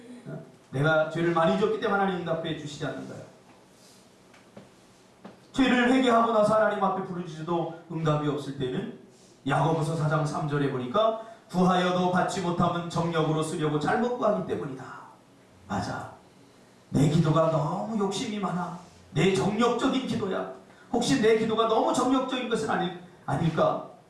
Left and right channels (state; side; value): identical; both; correlation 1.00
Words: 내가 죄를 많이 졌기 때문에 하나님 응답해 주시지 않는 거야. 죄를 회개하고 나서 하나님 앞에 부르짖어도 응답이 없을 때는 야고보서 4장 3절에 보니까 구하여도 받지 못하면 정력으로 쓰려고 잘못 구하기 때문이다. 맞아. 내 기도가 너무 욕심이 많아. 내 정력적인 기도야. 혹시 내 기도가 너무 정력적인 것은 아닐까?